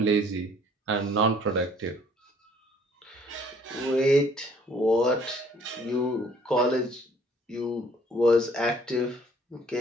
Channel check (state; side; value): normal; both; correlation 0.59